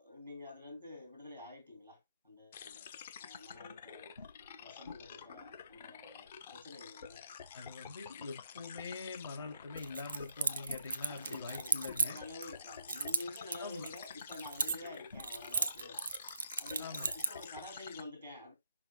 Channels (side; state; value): both; inverted; correlation -0.76